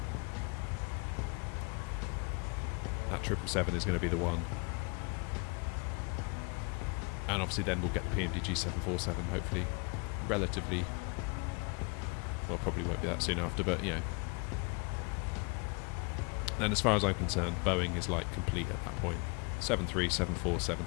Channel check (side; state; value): right; quieter; 31.7 dB